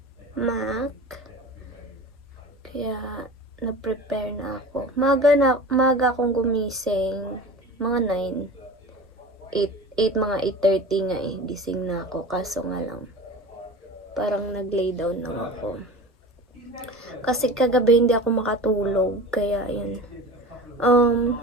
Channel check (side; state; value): both; normal; correlation 0.35